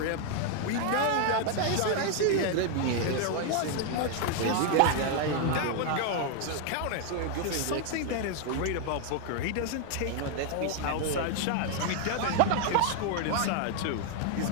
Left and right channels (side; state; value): both; different; correlation 0.01